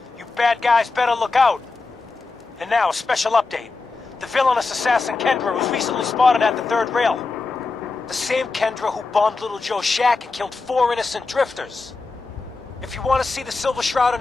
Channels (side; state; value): right; quieter; 3.9 dB